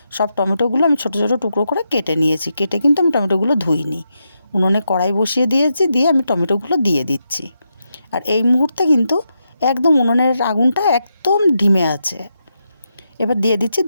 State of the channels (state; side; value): inverted; both; correlation -0.84